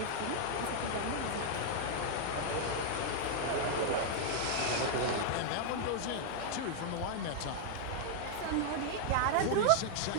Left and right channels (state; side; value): different; both; correlation 0.00